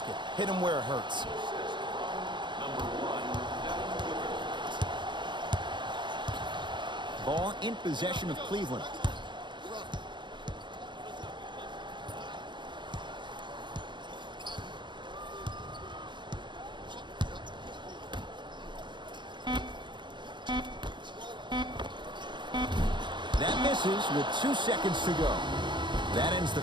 Hit him where it hurts. Ball in possession of Cleveland. That misses with 2 seconds to go. That ends the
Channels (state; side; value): late; left; 0.23 ms